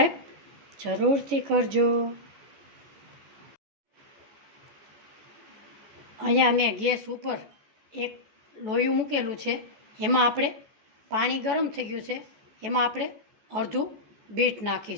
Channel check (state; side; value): late; left; 14 ms